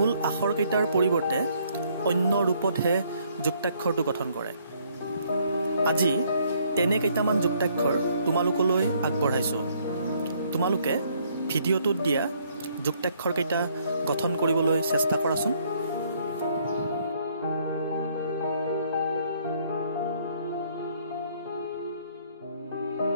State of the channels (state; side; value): inverted; both; correlation -0.66